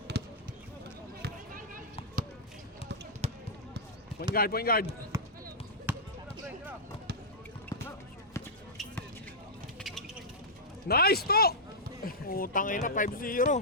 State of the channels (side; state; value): both; normal; correlation -0.11